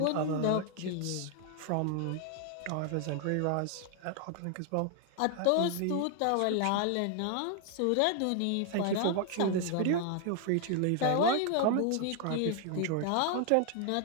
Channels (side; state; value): both; different; correlation 0.00